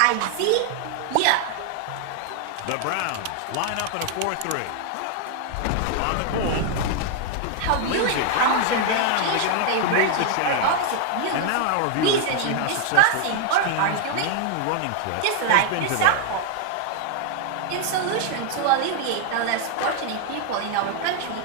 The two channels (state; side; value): different; both; correlation 0.00